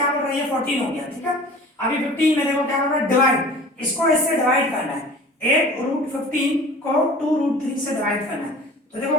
कर रहा है, ये 14 हो गया, ठीक है। अभी 15 में देखो क्या कर रहा है डिवाइड, इसको इससे डिवाइड करना है। 8 √15 को 2 √3 से डिवाइड करना है। तो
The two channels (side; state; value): both; normal; correlation 0.43